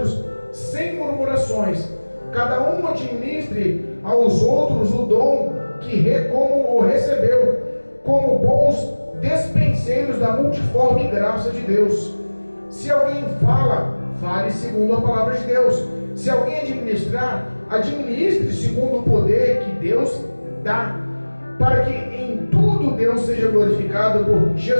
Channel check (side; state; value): both; inverted; correlation -1.00